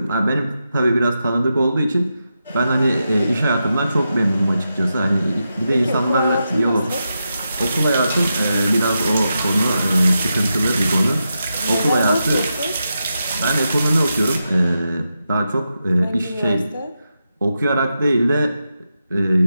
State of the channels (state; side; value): inverted; both; correlation -0.87